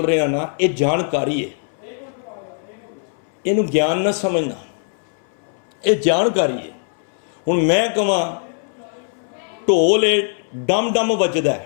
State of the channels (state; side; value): silent; right; 65 dB below the other